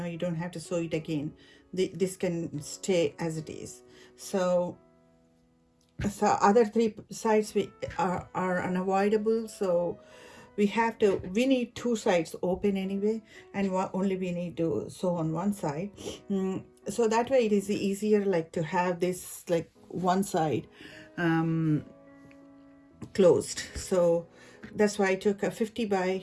don't have to sew it again. This can stay as it is. So other three sides are unavoidable, so we need two sides open anyway, and only we need to sew on one side. So that way it is easier, like to have this like one side closed. So that's why I took a 50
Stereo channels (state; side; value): identical; both; correlation 1.00